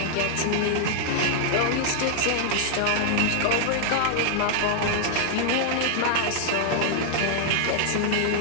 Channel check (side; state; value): both; different; correlation -0.01